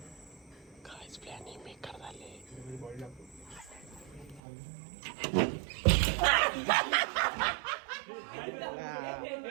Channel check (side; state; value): left; drops out; at 4.4 s